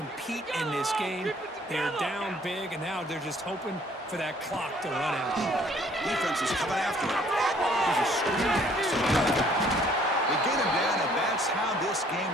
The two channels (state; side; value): normal; both; correlation 0.60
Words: in this game. They're down big, and now they're just hoping for that clock to run out. Defense is coming after him. There's a screen pass. They get him down, and that's how this game